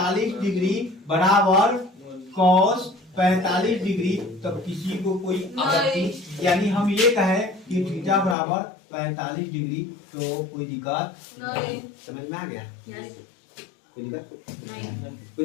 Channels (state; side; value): drops out; right; at 8.3 s